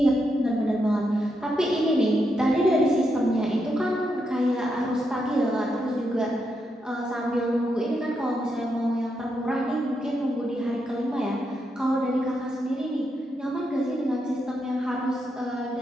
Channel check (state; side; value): normal; both; correlation 0.82